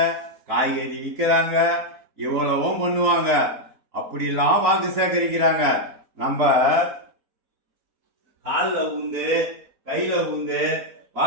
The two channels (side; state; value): left; late; 3.9 ms